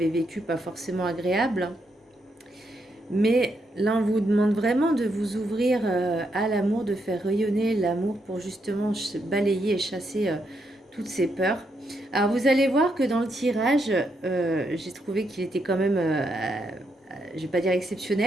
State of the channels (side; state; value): both; normal; correlation 0.79